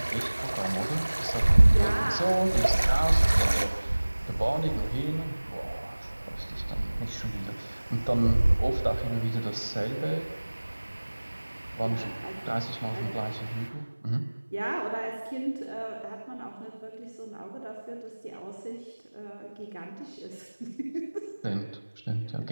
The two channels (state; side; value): inverted; both; correlation -1.00